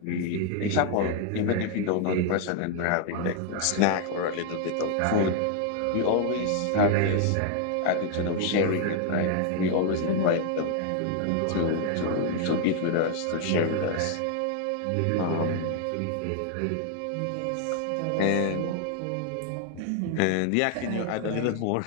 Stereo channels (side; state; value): both; different; correlation 0.00